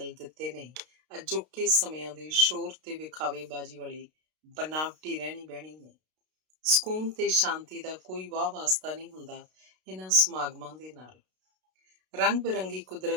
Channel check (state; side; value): late; left; 32 ms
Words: ਦਿੱਤੇ ਨੇ। ਅਜੋਕੇ ਸਮਿਆਂ ਦੇ ਸ਼ੋਰ ਤੇ ਵਿਖਾਵੇਬਾਜ਼ੀ ਵਾਲੀ ਬਨਾਵਟੀ ਰਹਿਣੀ ਬਹਿਣੀ ਨੇ। ਸਕੂਨ ਤੇ ਸ਼ਾਂਤੀ ਦਾ ਕੋਈ ਵਾਹ ਵਾਸਤਾ ਨਹੀਂ ਹੁੰਦਾ ਇਹਨਾਂ ਸਮਾਗਮਾਂ ਦੇ ਨਾਲ। ਰੰਗ ਬਿਰੰਗੀ